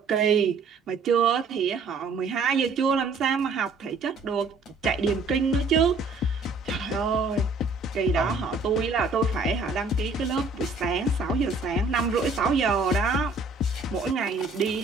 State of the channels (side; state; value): left; quieter; 3.6 dB